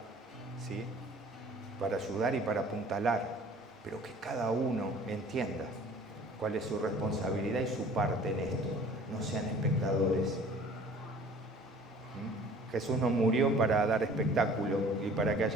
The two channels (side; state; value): both; normal; correlation 0.49